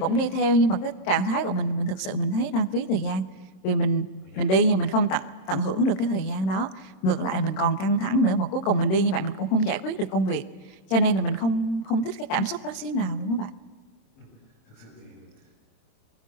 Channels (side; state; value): right; late; 26 ms